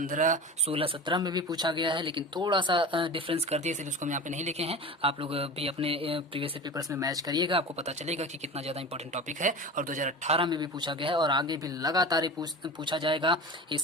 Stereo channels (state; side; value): normal; both; correlation 0.32